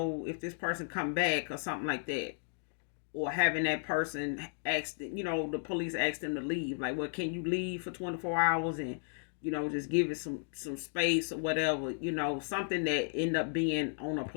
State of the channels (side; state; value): right; silent; digital silence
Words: this person come back or something like that. Or having that person ask, the police ask them to leave. Like, well, can you leave for 24 hours and, just give it some space or whatever, something that end up being on a